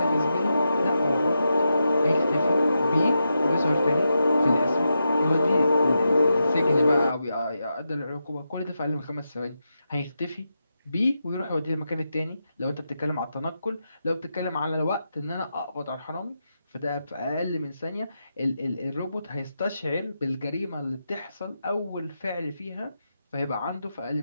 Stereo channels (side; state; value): both; inverted; correlation -0.87